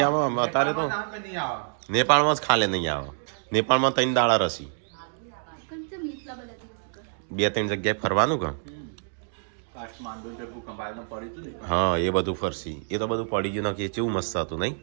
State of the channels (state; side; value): silent; left; digital silence